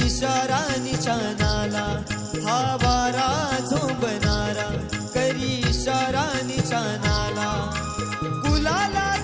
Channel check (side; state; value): both; identical; correlation 1.00